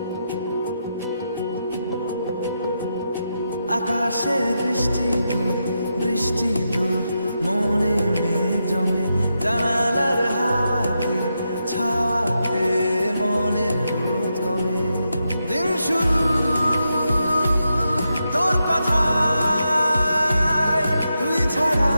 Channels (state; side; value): inverted; both; correlation -0.86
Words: আকাশে বৃষ্টি তোর, বৃষ্টি তোর মনে মেঘ জমে, জানালার হাওয়াতে ছাওয়াতে মনের রোদ কমে। দিন শুরু তোর কথায়, তুই ছাড়া